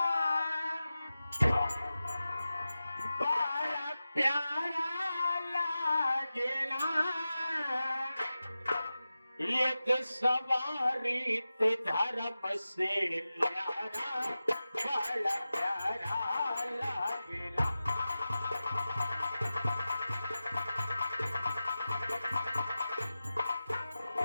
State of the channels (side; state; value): both; inverted; correlation -0.94